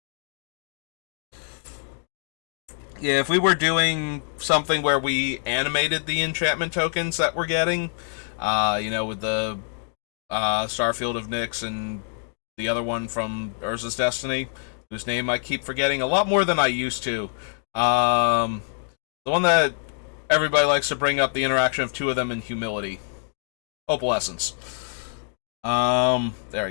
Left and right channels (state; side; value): silent; right; digital silence